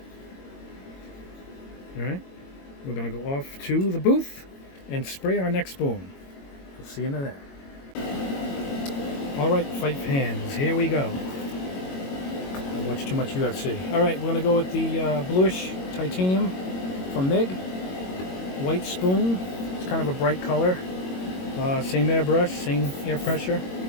All right, we're gonna go off to the booth and spray our next spoon. We'll see you in there. All right, five hands, here we go. I watch too much UFC. All right, we're gonna go with the bluish titanium from Mig. White spoon. It's kind of a bright color. Same airbrush, same air pressure,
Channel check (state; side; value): late; right; 22 ms